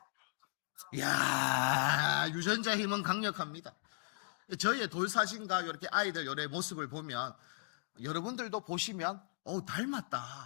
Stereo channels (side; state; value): right; silent; digital silence